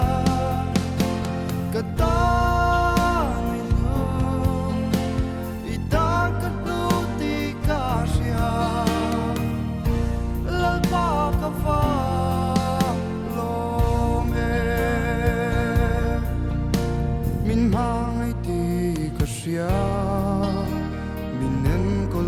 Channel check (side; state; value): both; identical; correlation 1.00